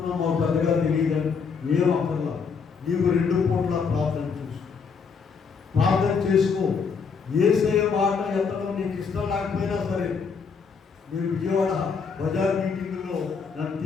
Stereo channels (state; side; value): quieter; right; 5.7 dB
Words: మాకు పెద్దగా తెలియదని. ఏం అక్కర్లా, నీకు 2 పూట్ల ప్రార్థన చేసుకో. యేసయ్య మాట ఎత్తడం నీకు ఇష్టం లేకపోయినా సరే, మీరు విజయవాడ బజార్ మీటింగ్లో నన్ను